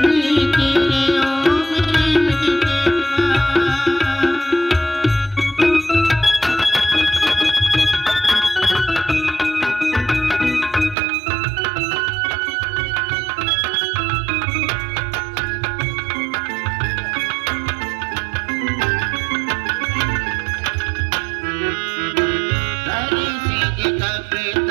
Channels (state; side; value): drops out; left; at 11.0 s